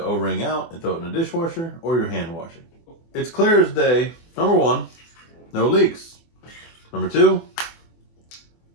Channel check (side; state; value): right; late; 24 ms